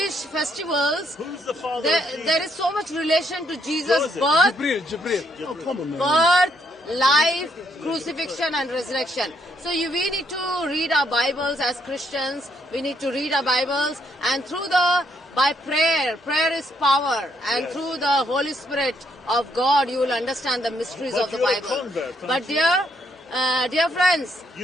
festivals, Who's the father of Jesus? there is so much relation to Jesus' Joseph. birth, Jibril. Oh, come on, man. birth, life, crucifixion and resurrection. So we need to read our Bibles as Christians. We need to read our Bibles, and by prayer is power, and through the Holy Spirit of God you will understand the mysteries But of the you're a Bible. convert, aren't But you? dear friends,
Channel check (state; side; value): normal; both; correlation 0.73